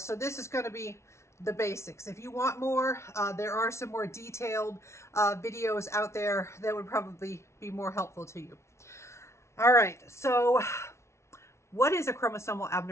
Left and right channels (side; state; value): right; late; 0.13 ms